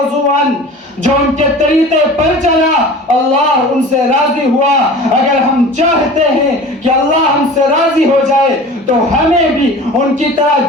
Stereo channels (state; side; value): normal; both; correlation 0.39